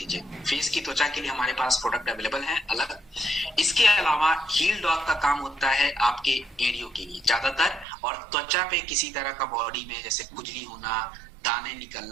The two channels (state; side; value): drops out; left; at 7.9 s